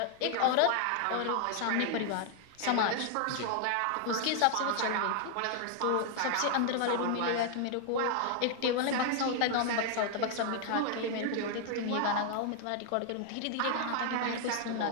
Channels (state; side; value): different; both; correlation 0.00